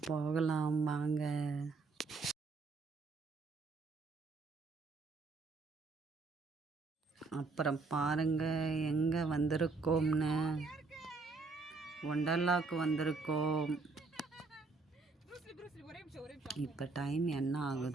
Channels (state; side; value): quieter; left; 4.0 dB